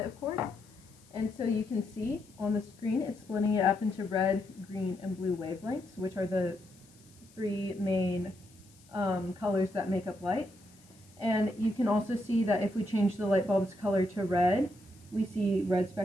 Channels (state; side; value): noise; left; hiss, 27 dB below the sound